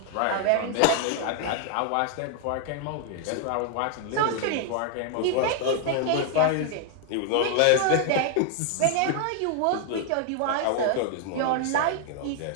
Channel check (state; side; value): different; both; correlation 0.00